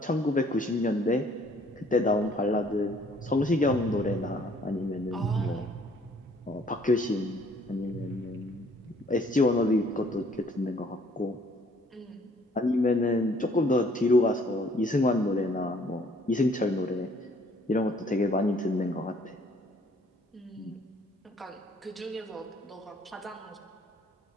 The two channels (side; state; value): both; normal; correlation 0.60